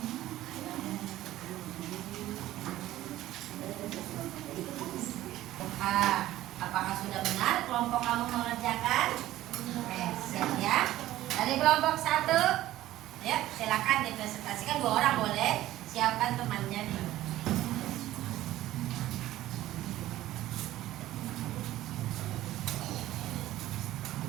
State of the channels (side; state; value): left; quieter; 14.8 dB